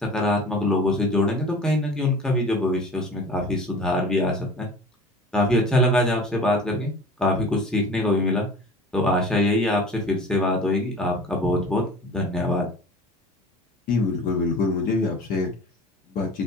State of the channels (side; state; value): both; normal; correlation 0.41